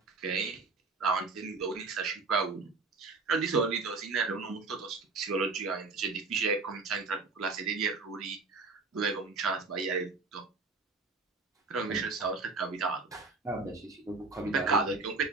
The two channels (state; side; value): quieter; left; 4.0 dB